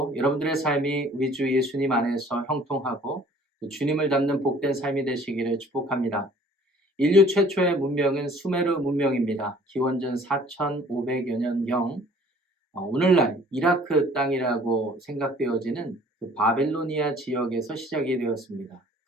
여러분들의 삶이 우리 주 예수님 안에서 형통하고 주님을 닮는 복된 삶이 되시기를 축복합니다. 인류 최초의 문명은 수메르 문명입니다. 기원전 4500여 년경 오늘날 이라크 땅이라고 생각되어지는 그 바벨로니아 지역에서 시작이 되었습니다.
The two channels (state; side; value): normal; both; correlation 0.53